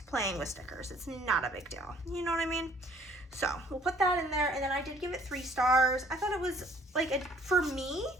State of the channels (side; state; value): both; normal; correlation 0.59